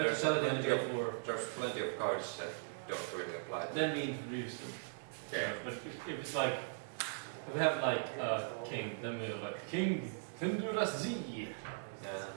to sell it in the Great War. there's plenty of cards that don't really apply. Then we introduce them. Yeah. But if it's like, if we have like a king, then we have like King Tendurazi. Yeah.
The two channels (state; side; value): silent; left; digital silence